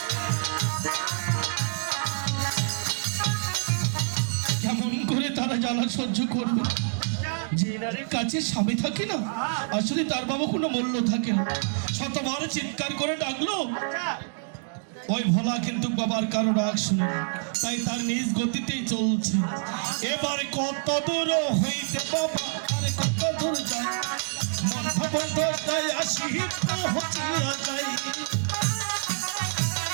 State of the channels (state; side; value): silent; left; digital silence